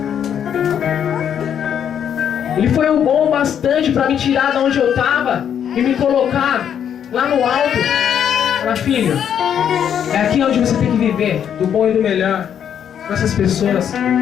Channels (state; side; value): quieter; right; 8.8 dB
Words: Ele foi o bom bastante para me tirar de onde eu tava e me colocar lá no alto. Fala, filho, é aqui onde você tem que viver, do bom e do melhor, com essas pessoas.